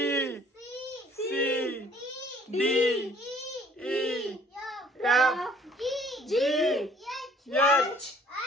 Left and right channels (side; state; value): both; normal; correlation 0.57